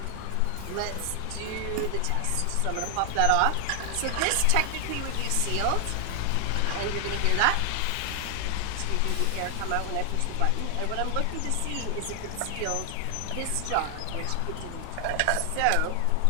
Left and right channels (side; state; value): both; different; correlation 0.00